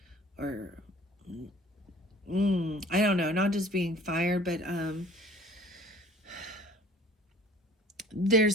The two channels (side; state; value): both; normal; correlation 0.50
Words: I don't know, not just being fired, but